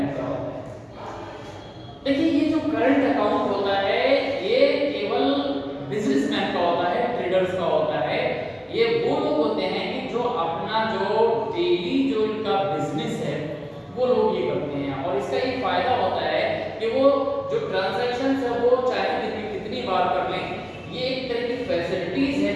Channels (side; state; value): both; identical; correlation 1.00